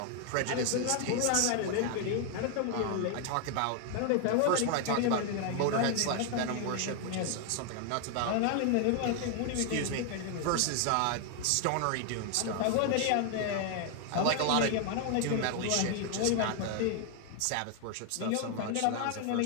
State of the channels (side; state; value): both; different; correlation 0.00